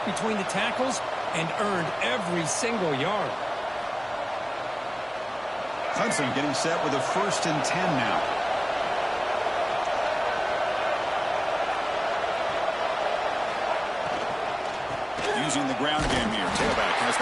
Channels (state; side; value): identical; both; correlation 1.00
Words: between the tackles and earned every single yard. Clemson getting set with a 1st and 10 now. Using the ground game here. Tailback has